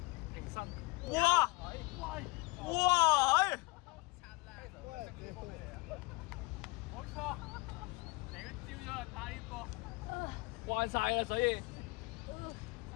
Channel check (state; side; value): quieter; right; 25.8 dB